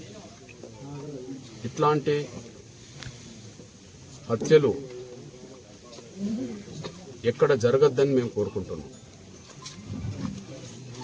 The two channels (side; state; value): both; identical; correlation 1.00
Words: ఇట్లాంటి హత్యలు ఎక్కడ జరగద్దని మేము కోరుకుంటున్నాం.